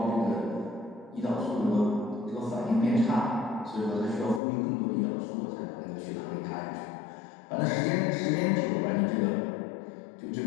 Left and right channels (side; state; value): right; drops out; at 4.4 s